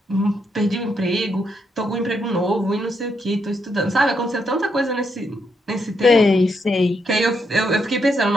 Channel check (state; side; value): normal; both; correlation 0.78